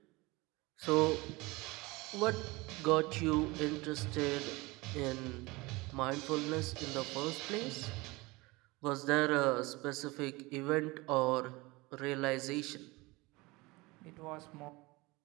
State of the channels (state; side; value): quieter; left; 23.1 dB